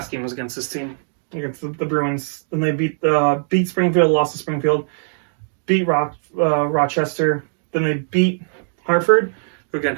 game was against this team, against the Bruins. Then they beat Springfield, lost to Springfield, beat Rochester. Then they beat Hartford, who again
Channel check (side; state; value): left; silent; digital silence